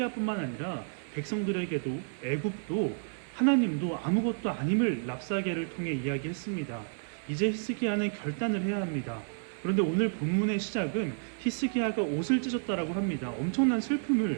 아니라 백성들에게도 애굽도 하나님도 아무것도 아님을 랍사게를 통해 이야기했습니다. 이제 히스기야는 결단을 해야 합니다. 그런데 오늘 본문의 시작은 히스기야가 옷을 찢었다라고 합니다. 엄청난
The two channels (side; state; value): left; silent; 57 dB below the other